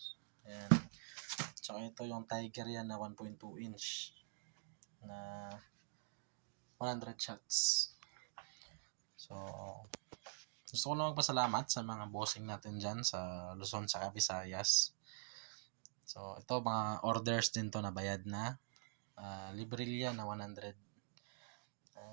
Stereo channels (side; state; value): left; silent; digital silence